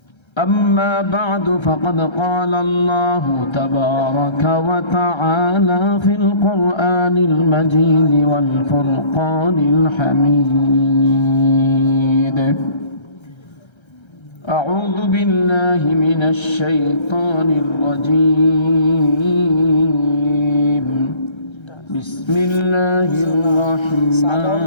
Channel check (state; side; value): late; right; 1.3 ms